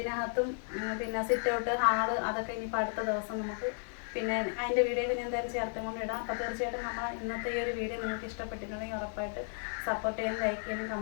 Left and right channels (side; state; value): right; silent; 55 dB below the other